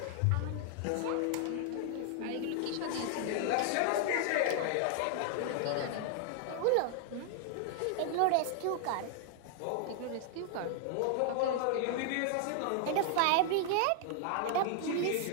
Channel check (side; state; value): both; different; correlation 0.00